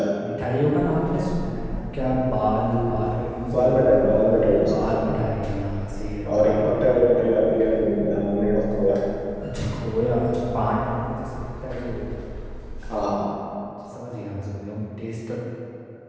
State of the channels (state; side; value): identical; both; correlation 1.00